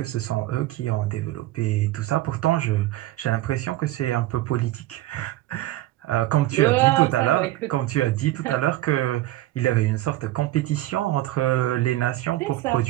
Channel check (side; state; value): left; quieter; 15.9 dB